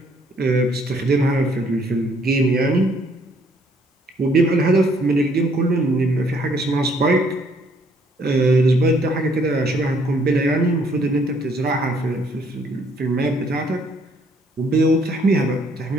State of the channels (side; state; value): both; normal; correlation 0.65